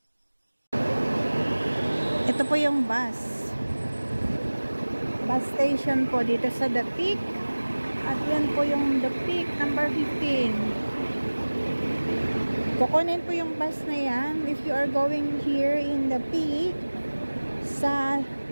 Ito po yung bus station po dito sa The Peak. At yan po yung The Peak number 15. Kukunin po yung bus na yan if you are going here in The Peak sa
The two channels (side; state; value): both; inverted; correlation -1.00